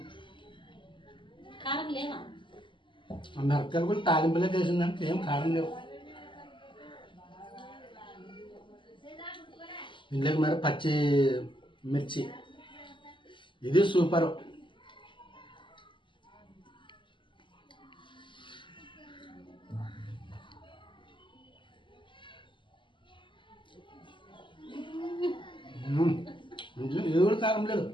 కారం లేవా? మిరపకాయలు కూడా తాలింపులే వేసిందంటే ఏం కారం లేవు. ఇందులోకి మరి పచ్చి మిర్చి, ఇది సూపర్. ఇది కూడా కారం లేదు,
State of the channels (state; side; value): late; right; 0.24 ms